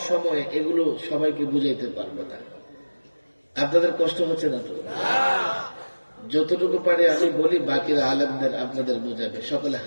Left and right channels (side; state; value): both; inverted; correlation -1.00